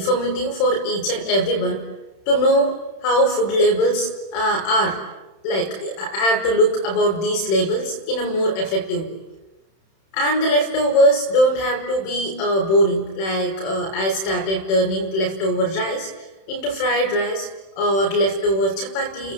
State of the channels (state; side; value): late; right; 31 ms